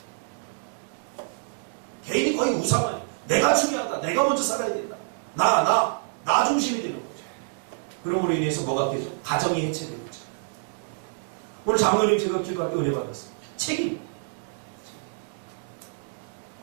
개인이 거의 우상화해. 내가 중요하다. 내가 먼저 살아야 된다. 나 중심이 되는 거죠. 그러므로 인해서 뭐가 되죠? 가정이 해체되는 거죠. 오늘 장로님 제가 기도할 때 은혜 받았어요. 책임.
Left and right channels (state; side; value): silent; left; digital silence